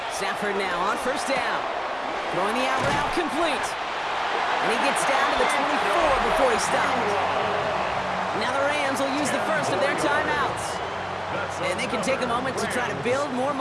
Stafford now on 1st down. Throwing the out route complete. And he gets down to the 24 before he stops. Now the Rams will use the 1st of their timeouts. And they can take a moment to try to build more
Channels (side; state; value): both; identical; correlation 1.00